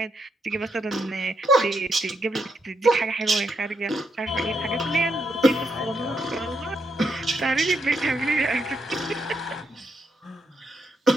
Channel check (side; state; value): both; normal; correlation 0.80